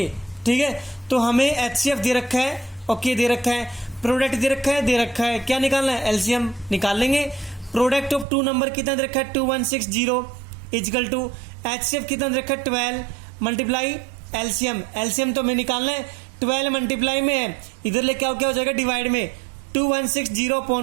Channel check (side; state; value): left; drops out; at 8.2 s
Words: ठीक है, तो हमें HCF दे रखा है, ओके दे रखा है, प्रोडक्ट दे रखा है, क्या निकालना है एलसीएम निकाल लेंगे। प्रोडक्ट ऑफ टू नंबर कितना दे रखा है 2160 इजकल टू HCF कितना दे रखा है 12 मल्टीप्लाई एलसीएम तो हमें निकालना है 12 मल्टीप्लाई में है, इधर लेके आओ क्या हो जाएगा डिवाइड में 2160